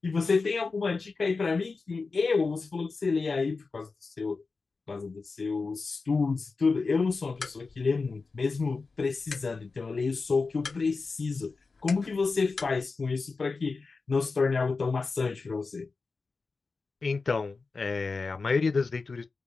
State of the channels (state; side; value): quieter; right; 4.2 dB